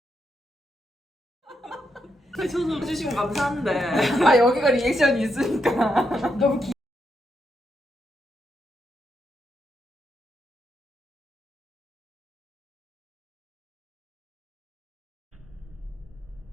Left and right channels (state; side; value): normal; both; correlation 0.81